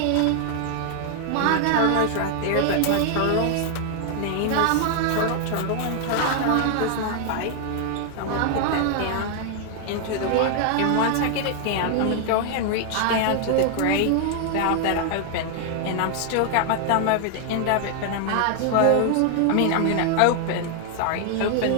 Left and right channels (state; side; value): different; both; correlation 0.00